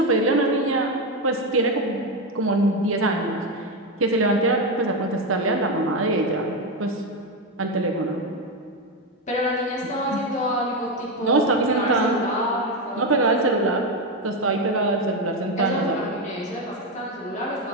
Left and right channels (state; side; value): normal; both; correlation 0.11